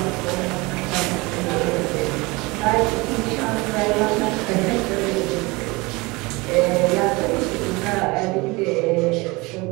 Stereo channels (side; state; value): left; quieter; 24.3 dB